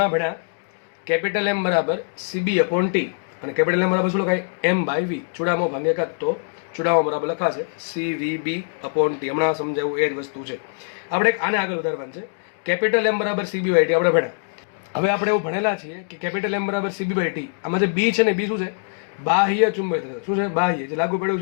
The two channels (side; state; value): right; silent; digital silence